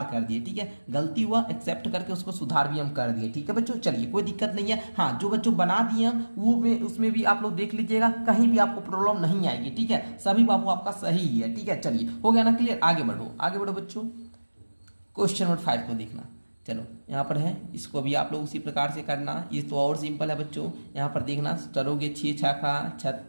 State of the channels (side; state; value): both; inverted; correlation -1.00